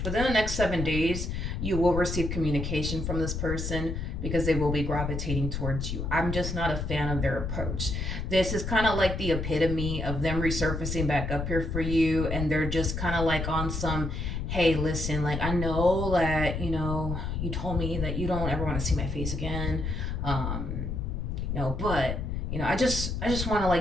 Within the next 7 days, you will receive communication from this person, because they will be gravitating towards you. I'm just not a fan of their approach. This is kind of like the epitome of them resurfacing back up here for you, and they're just kind of like on some, hey, listen, like, I know that, you know, you told me that you don't ever want to see my face again, you know, but, you know, I just want to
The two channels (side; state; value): left; noise; rumble, 3 dB below the sound